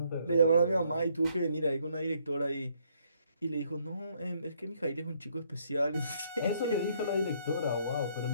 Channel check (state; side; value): inverted; both; correlation -0.69